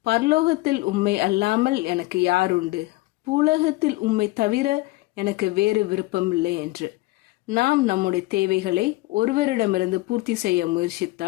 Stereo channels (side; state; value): right; quieter; 20.3 dB